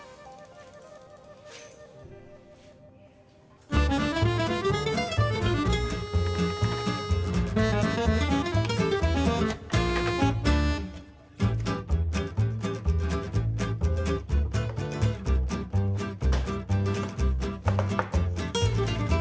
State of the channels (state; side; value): identical; both; correlation 1.00